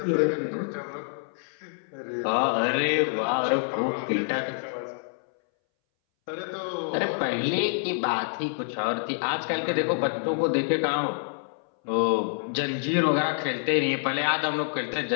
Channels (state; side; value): silent; right; 60 dB below the other